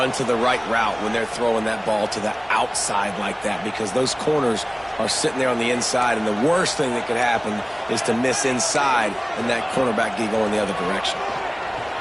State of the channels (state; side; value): identical; both; correlation 1.00